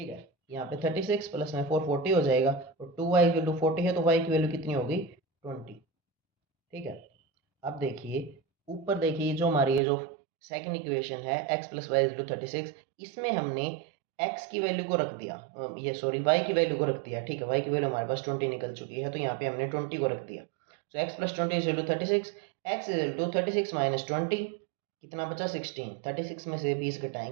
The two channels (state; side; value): drops out; left; at 9.8 s